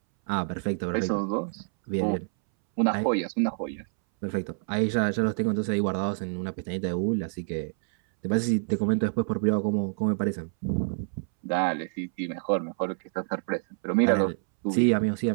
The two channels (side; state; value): left; silent; 60 dB below the other